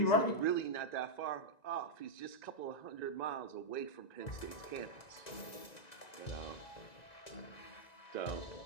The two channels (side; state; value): right; late; 1.9 ms